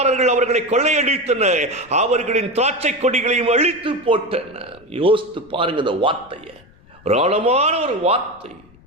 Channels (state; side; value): noise; left; rumble, 27 dB below the sound